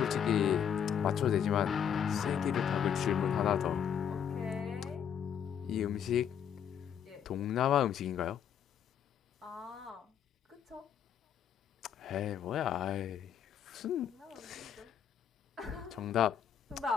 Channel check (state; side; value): quieter; right; 8.5 dB